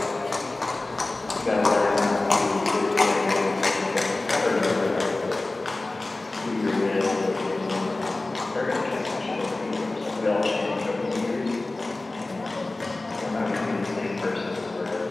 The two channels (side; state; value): right; quieter; 3.0 dB